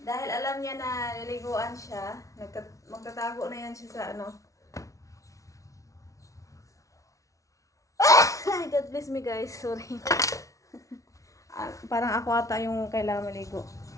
Dahil alam niya na liliguan siya, magtatago na yan siya sa God bless me guys, sorry. Parang ako ata yung kailangan maligo.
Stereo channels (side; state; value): right; late; 0.16 ms